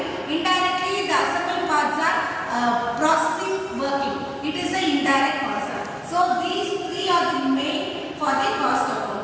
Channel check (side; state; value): both; identical; correlation 1.00